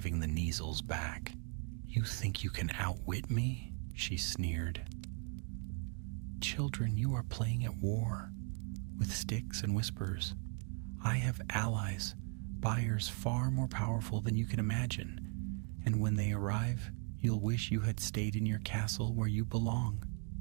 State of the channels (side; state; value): left; quieter; 39.5 dB